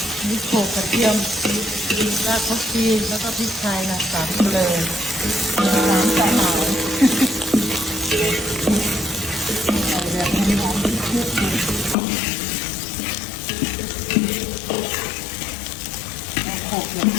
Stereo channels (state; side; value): drops out; right; at 12.0 s